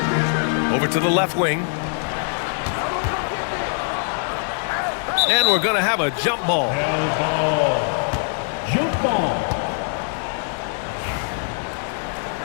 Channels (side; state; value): right; silent; 61 dB below the other